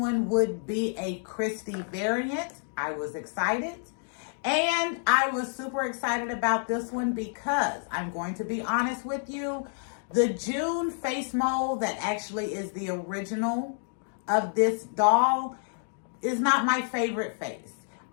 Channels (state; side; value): silent; right; 59 dB below the other